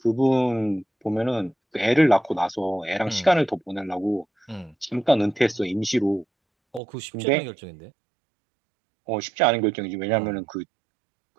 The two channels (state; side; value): drops out; left; at 6.8 s